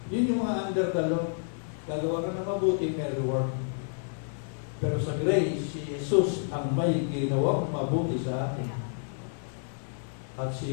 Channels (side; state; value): right; silent; 58 dB below the other